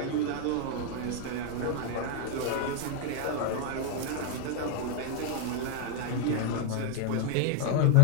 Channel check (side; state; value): both; different; correlation 0.00